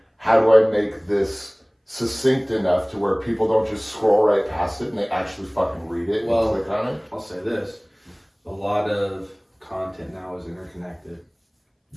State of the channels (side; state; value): both; identical; correlation 1.00